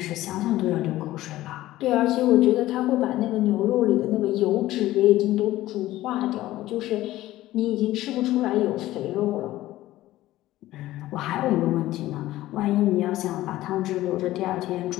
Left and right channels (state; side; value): quieter; right; 15.7 dB